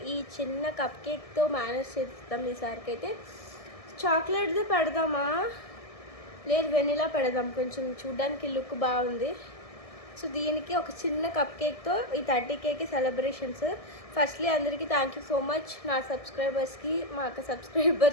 ఈ చిన్న కప్ కేక్తో మేనేజ్ చేస్తాం. ఈసారికి అయితే చాక్లెట్ది పెడదామా, లేదు వెనిలా పెడదాం, కొంచెం చూడ్డానికి లుక్ బాగుంది. సో దీనికి ఒక చిన్న కప్ కేక్తో ఈ 30Kకి సెలబ్రేషన్స్. ఫస్ట్లీ అందరికీ థ్యాంక్ యూ సో మచ్, నా సబ్స్క్రైబర్స్కి, మా అక్క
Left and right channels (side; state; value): right; late; 1.6 ms